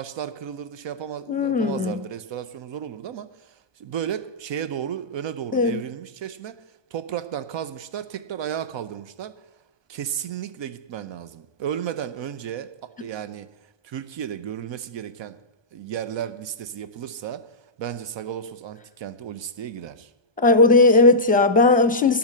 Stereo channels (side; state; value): left; late; 1.2 ms